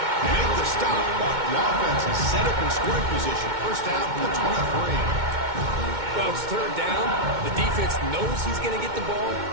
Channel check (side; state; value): left; late; 2.2 ms